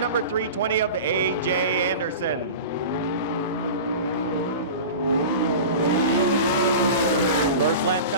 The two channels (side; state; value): both; inverted; correlation -0.33